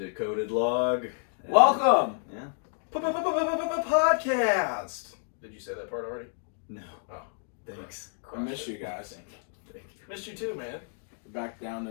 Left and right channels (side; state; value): right; silent; 58 dB below the other